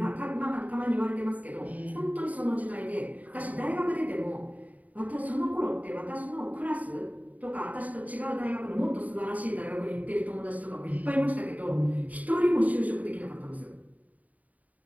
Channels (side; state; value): left; late; 0.072 ms